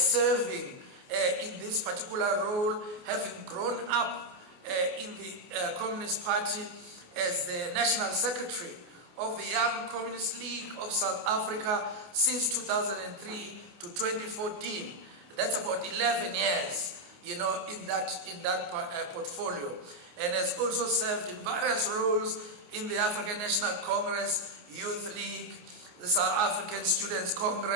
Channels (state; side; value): late; left; 28 ms